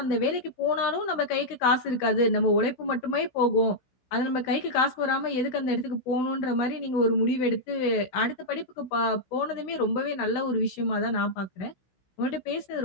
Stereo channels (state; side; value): late; right; 16 ms